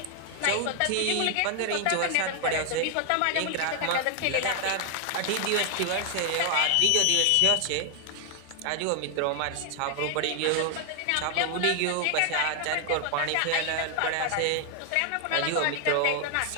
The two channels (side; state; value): both; different; correlation 0.00